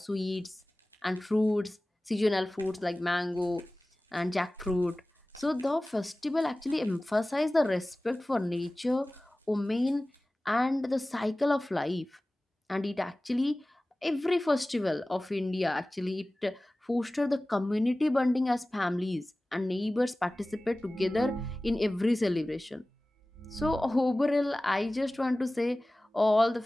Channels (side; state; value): both; normal; correlation 0.98